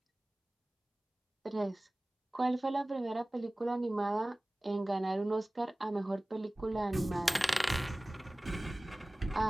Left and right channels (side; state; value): both; normal; correlation 0.98